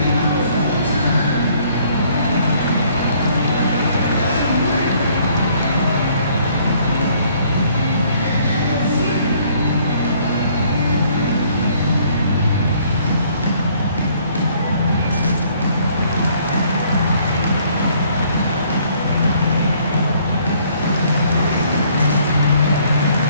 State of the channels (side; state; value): both; inverted; correlation -0.62